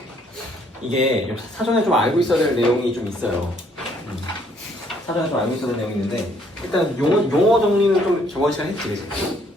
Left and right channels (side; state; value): both; normal; correlation 0.66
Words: 이게 사전에 좀 알고 있어야 될 내용이 좀 있어요. 사전에 좀 알고 있어야 될 내용이 있는데 일단 용어 정리는 좀 저번 시간에 했지, 그치?